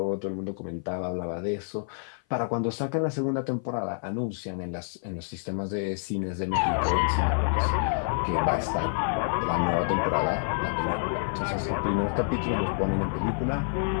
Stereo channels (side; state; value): right; silent; 55 dB below the other